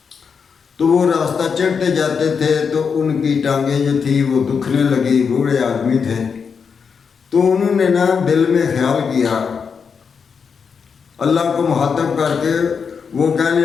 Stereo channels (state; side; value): quieter; right; 6.1 dB